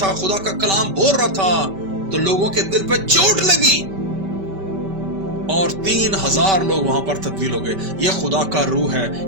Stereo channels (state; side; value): late; left; 5.2 ms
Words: خدا کا کلام بول رہا تھا تو لوگوں کے دل پہ چوٹ لگی اور 3000 لوگ وہاں پر تبدیل ہو گئے. یہ خدا کا روح ہے،